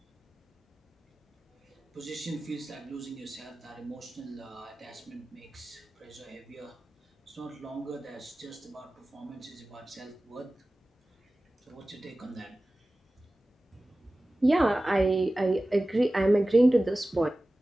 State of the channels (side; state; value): both; normal; correlation 0.96